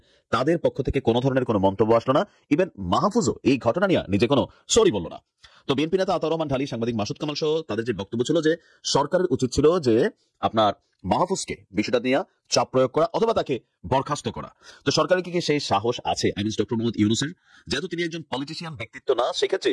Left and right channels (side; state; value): both; identical; correlation 1.00